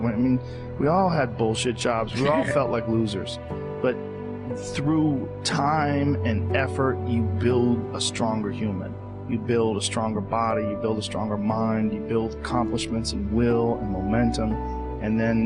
I mean, we all had bullshit jobs. We all felt like losers. But through time and effort, you build a stronger human. You build a stronger body, you build a stronger mind, you build accomplishments and will and momentum, and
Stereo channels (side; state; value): both; identical; correlation 1.00